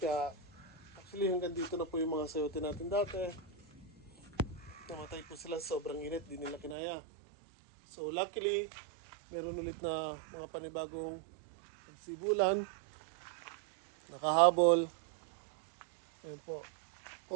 actually hanggang dito na po yung mga sayote natin dati. Namatay po sila, sobrang init, di nila kinaya. So luckily, meron ulit na mga panibagong sibulan, nakahabol. Ayan po.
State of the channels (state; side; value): drops out; left; at 6.8 s